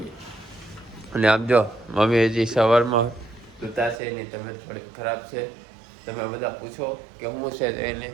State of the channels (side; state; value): left; drops out; at 4.0 s